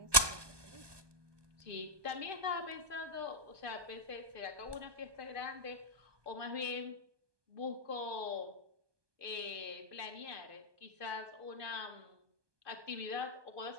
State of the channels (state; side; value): late; left; 1.2 ms